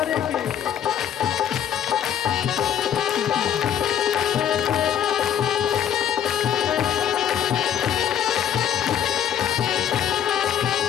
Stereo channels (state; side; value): quieter; right; 9.7 dB